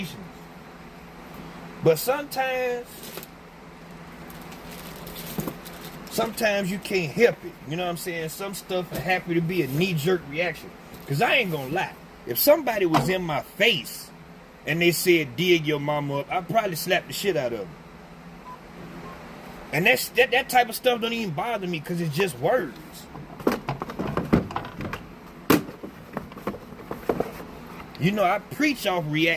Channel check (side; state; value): both; identical; correlation 1.00